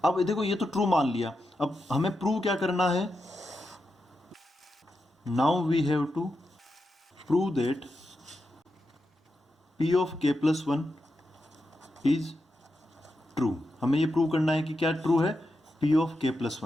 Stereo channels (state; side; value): normal; both; correlation 0.87